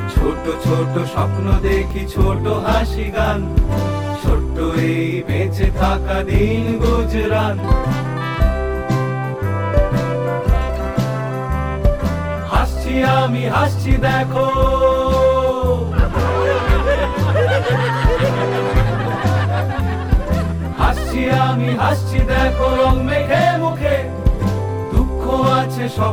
ছোট ছোট স্বপ্ন দেখি ছোট হাসি গান, ছোট্ট এই বেঁচে থাকা দিন গুজরান। হাসছি আমি হাসছি দেখো, হাসছি আমি হাসছি দেখো, রং মেখে মুখে দুঃখ আছে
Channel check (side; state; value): both; identical; correlation 1.00